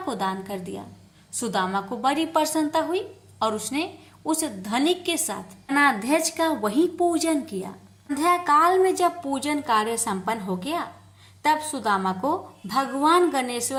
दान कर दिया। सुदामा को बड़ी प्रसन्नता हुई और उसने उस धनिक के साथ गणाध्यक्ष का वही पूजन किया। संध्या काल में जब पूजन कार्य संपन्न हो गया तब सुदामा को भगवान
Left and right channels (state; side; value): identical; both; correlation 1.00